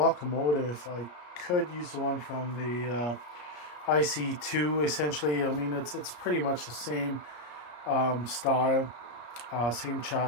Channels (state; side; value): late; right; 34 ms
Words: I could use the one from the ICE2 essentially. I mean, it's pretty much the same style, same